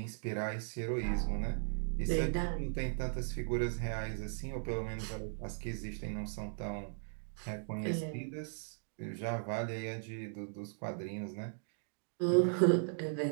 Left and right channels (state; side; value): silent; left; digital silence